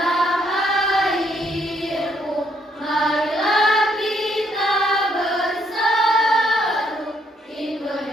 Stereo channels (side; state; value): both; normal; correlation 0.71